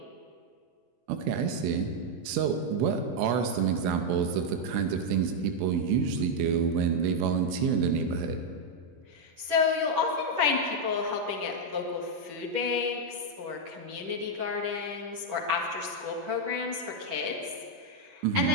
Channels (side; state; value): left; late; 10 ms